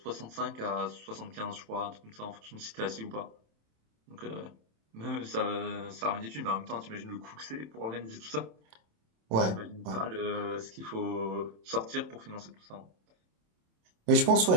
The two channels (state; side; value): late; left; 27 ms